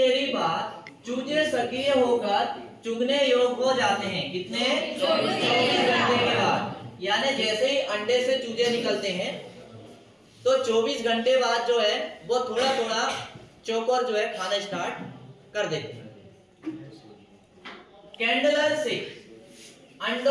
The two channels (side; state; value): both; identical; correlation 1.00